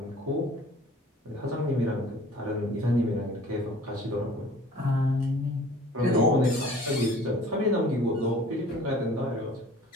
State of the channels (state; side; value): normal; both; correlation 0.48